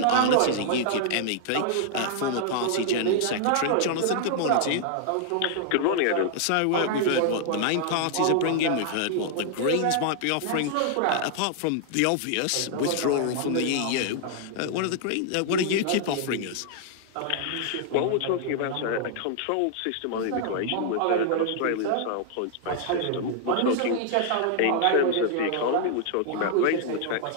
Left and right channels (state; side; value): different; both; correlation -0.01